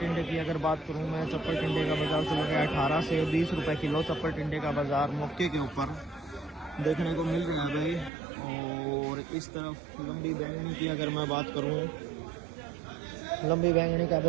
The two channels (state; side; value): drops out; left; at 8.1 s